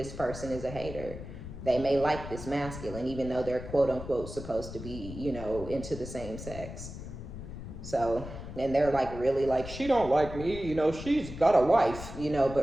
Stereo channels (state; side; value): noise; left; rumble, 10 dB below the sound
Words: person is a hater. They may like this masculine, even though they're quote unquote supposed to be, into the same sex. So, and they're like, really, like, she don't like me, she's got a wife,